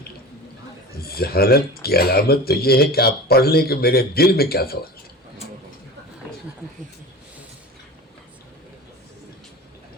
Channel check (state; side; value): normal; both; correlation 0.35